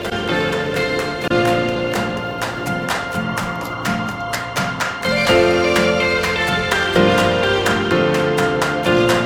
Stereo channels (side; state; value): both; identical; correlation 1.00